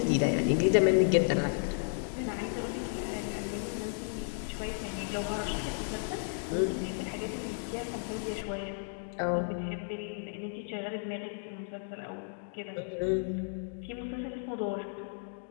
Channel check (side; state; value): right; silent; digital silence